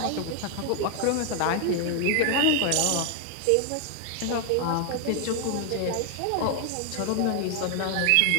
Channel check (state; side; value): different; both; correlation 0.00